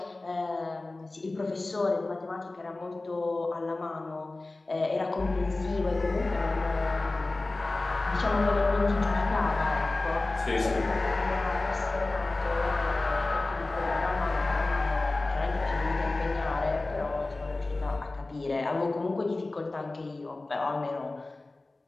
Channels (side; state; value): right; quieter; 3.1 dB